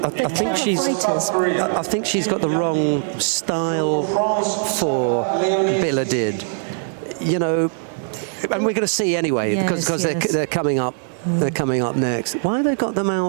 think she's got the wrong style for Biladid. You know, and we're going to see anyway, because they're coming up. They're coming up next. Why have they got them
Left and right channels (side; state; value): left; silent; 65 dB below the other